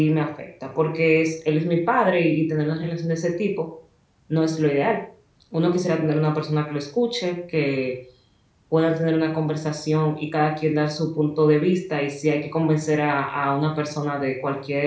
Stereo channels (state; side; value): identical; both; correlation 1.00